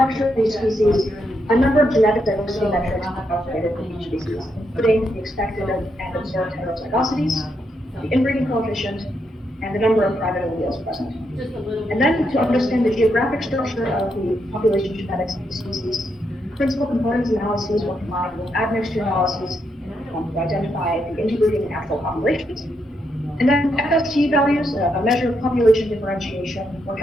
of these species, a number of genetic diversity metrics were calculated for each species, including the expected and observed heterozygosities, the inbreeding coefficient, and the number of private alleles present. And then to understand the geographic structure of the population genetics of the species, principal components analyses were combined with admixture analyses to identify the interbreeding and natural populations. And then FST values, a measure of population differentiation, were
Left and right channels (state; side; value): normal; both; correlation 0.80